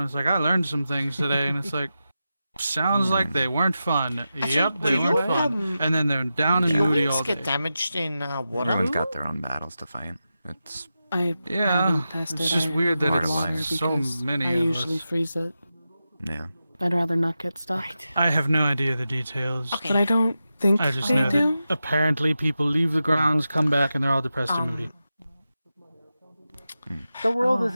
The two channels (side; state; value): both; inverted; correlation -0.91